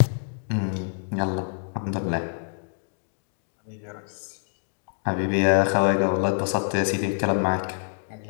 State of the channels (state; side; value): silent; right; digital silence